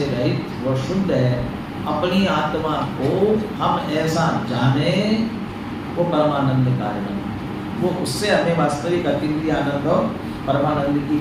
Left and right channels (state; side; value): identical; both; correlation 1.00